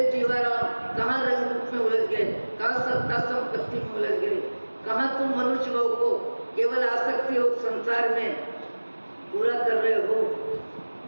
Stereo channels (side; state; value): both; inverted; correlation -1.00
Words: जीवाराम कहाँ रंग रूप में उलझ गए, कहाँ सत्ता संपत्ति में उलझ गए, कहाँ तुम मनुष्य भाव को केवल आसक्ति और संसार में पूरा कर रहे हो।